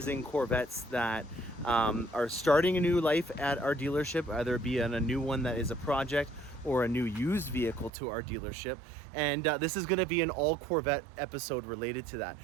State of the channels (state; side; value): drops out; left; at 7.9 s